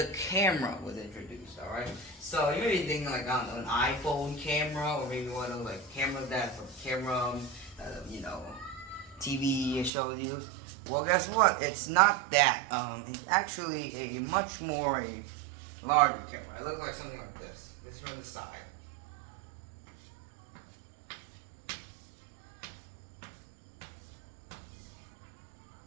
camera was introduced. All right. So you may be thinking like on an iPhone camera, or maybe one of those like cameras that TV shows use. Well, guess what? It's not that. It's actually a much more larger camera. It looks like something like this. This is from the side.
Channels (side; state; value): left; drops out; at 9.9 s